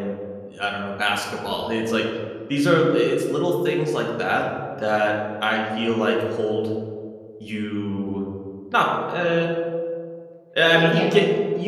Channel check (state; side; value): identical; both; correlation 1.00